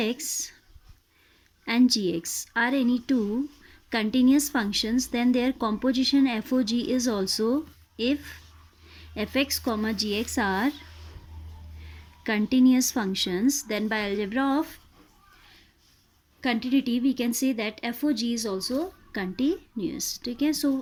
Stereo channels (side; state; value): both; identical; correlation 1.00